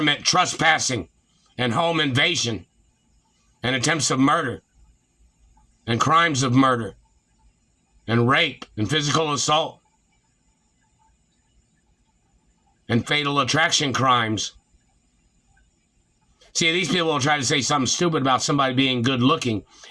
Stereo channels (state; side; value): identical; both; correlation 1.00